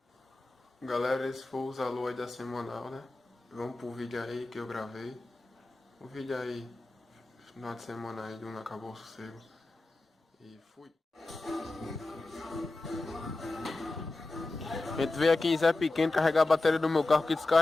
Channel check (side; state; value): right; quieter; 3.1 dB